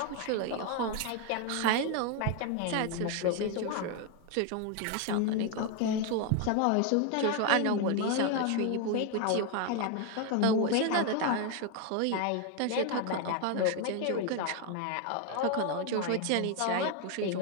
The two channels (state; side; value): different; both; correlation 0.01